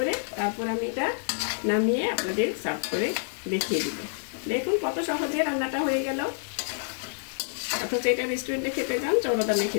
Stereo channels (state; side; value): silent; right; digital silence